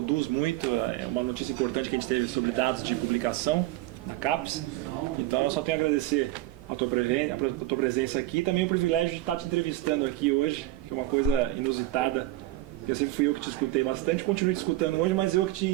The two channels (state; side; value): quieter; left; 16.1 dB